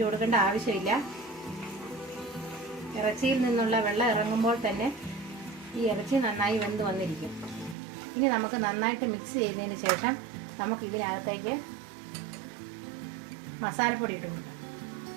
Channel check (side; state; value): left; drops out; at 7.8 s